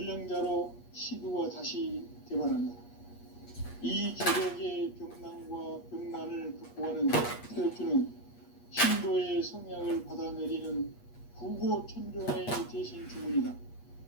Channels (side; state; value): right; late; 8.4 ms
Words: 시두가 다시 대발한다. 이 개벽의 병난과 병난을 극복하는 태엽주는 신도의 성향을 받아내리는 부고천존의 대신 주문이다.